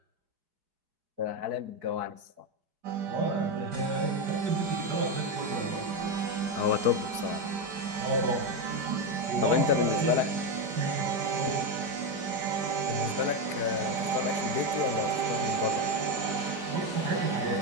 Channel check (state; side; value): late; left; 4.7 ms